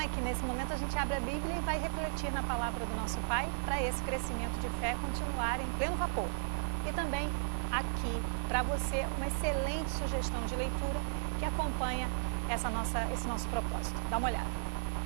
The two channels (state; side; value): silent; left; digital silence